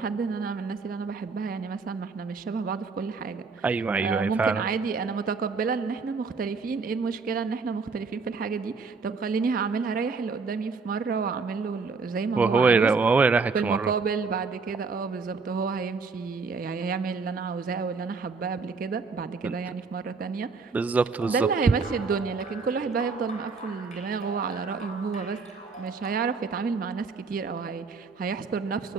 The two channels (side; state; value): left; quieter; 4.6 dB